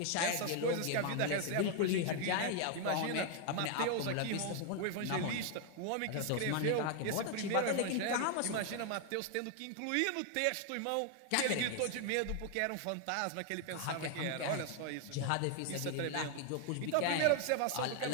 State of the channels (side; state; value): both; different; correlation 0.00